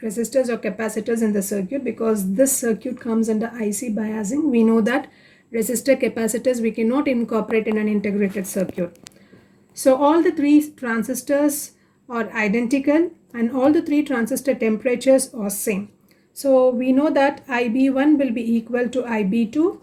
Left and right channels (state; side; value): identical; both; correlation 1.00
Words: or capacitors in the circuit because this circuit comes under IC biasing. We know that resistor capacitors we cannot incorporate in an integrated circuit. So all the 3 transistors are identical and all the 3 transistor temperatures are same. So we know that IB1 will be equal to IB2